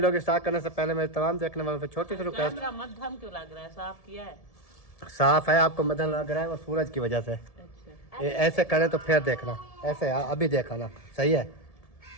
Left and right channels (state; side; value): late; right; 1.7 ms